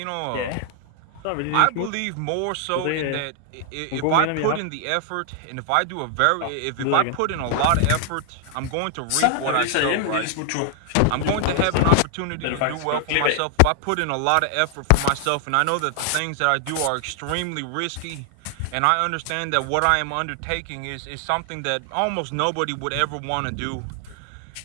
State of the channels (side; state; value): both; different; correlation 0.00